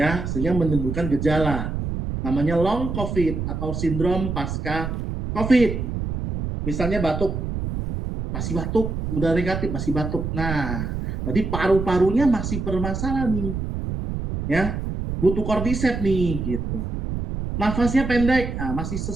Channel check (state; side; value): noise; right; rumble, 4 dB below the sound